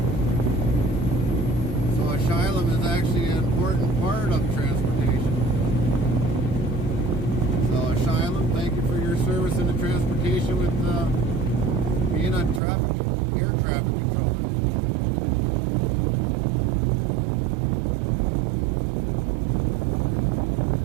So asylum is actually an important part of transportation. So asylum, thank you for your service in the transportation with being a air traffic controller.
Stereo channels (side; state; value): left; drops out; at 12.6 s